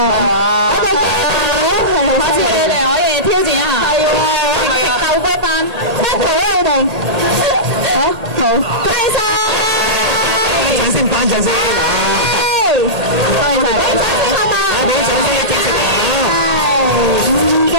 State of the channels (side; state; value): left; late; 1.8 ms